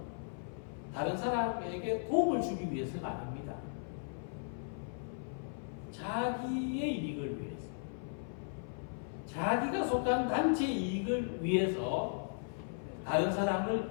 다른 사람에게 도움을 주기 위해서가 아닙니다. 자기의 이익을 위해서, 자기가 속한 단체 이익을 위해서 다른 사람을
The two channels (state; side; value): silent; right; 53 dB below the other